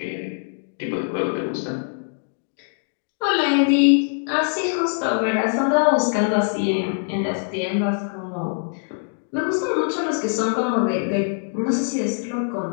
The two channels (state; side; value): silent; right; 60 dB below the other